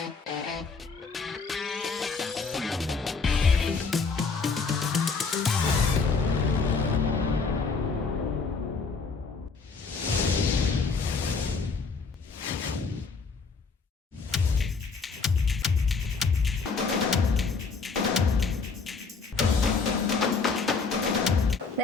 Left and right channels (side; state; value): right; quieter; 4.7 dB